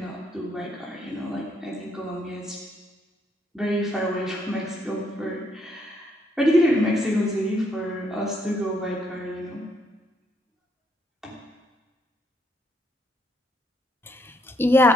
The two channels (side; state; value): both; normal; correlation 0.73